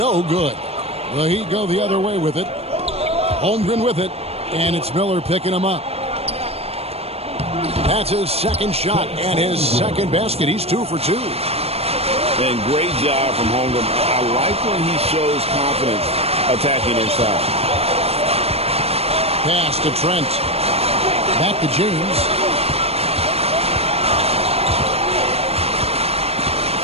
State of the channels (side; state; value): left; late; 0.29 ms